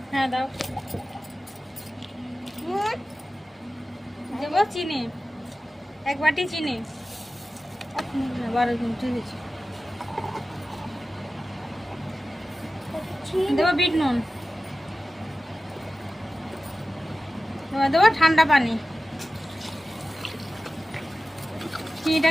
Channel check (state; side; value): normal; both; correlation 0.95